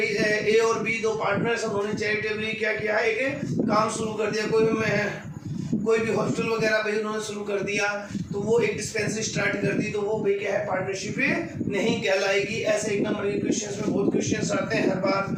ए और बी दो पार्टनर्स, उन्होंने चैरिटेबली क्या किया? एक काम शुरू कर दिया, कोई भी हॉस्टल वगैरह भाई उन्होंने शुरू कर दिया, तो वो एक डिस्पेंसरी स्टार्ट कर दी, तो वो भाई क्या है? पार्टनरशिप नहीं कहलाएगी। ऐसे एक नंबर के क्वेश्चंस में बहुत क्वेश्चंस आते हैं हर बार,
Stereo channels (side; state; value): both; identical; correlation 1.00